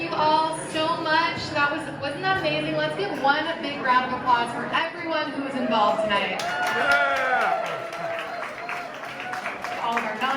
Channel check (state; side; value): identical; both; correlation 1.00